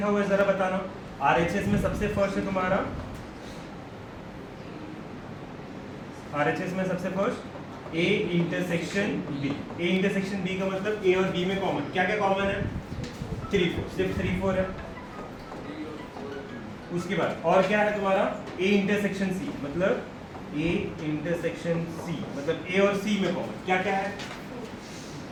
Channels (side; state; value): both; identical; correlation 1.00